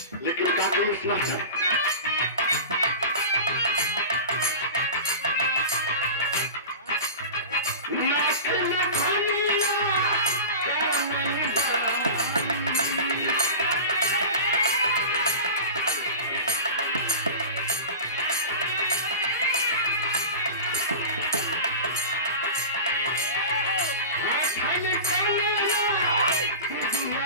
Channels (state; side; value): inverted; both; correlation -0.31